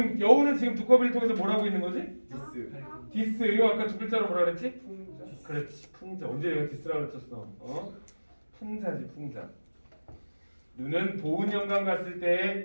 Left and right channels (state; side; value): inverted; both; correlation -1.00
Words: 여우는 지금 두꺼비를 통해서 뭐라고 있는 거지? 디스. 이거 아까 두 글자로 뭐라 그랬지? 풍자. 그렇지, 풍자. 언제 내가 디스라고 그랬었어? 풍자지, 풍자. 눈은 보은 영광 갔을